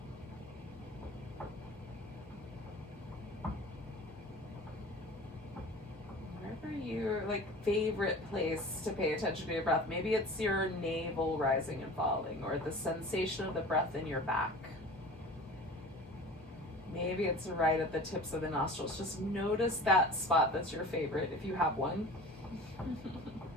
Wherever your favorite place to pay attention to your breath. Maybe it's your navel rising and falling, or the sensation of the breath in your back. Maybe it's right at the tips of the nostrils. Just notice that spot that's your favorite, if you have one.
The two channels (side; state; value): both; normal; correlation 0.39